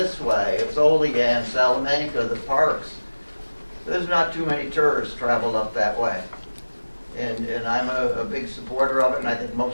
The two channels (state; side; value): inverted; both; correlation -1.00